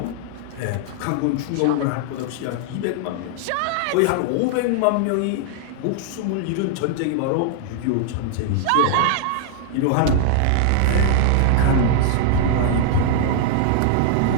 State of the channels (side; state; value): both; different; correlation 0.00